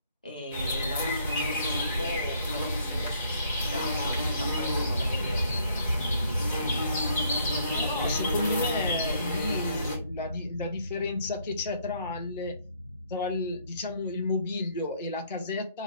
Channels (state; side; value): inverted; both; correlation -0.65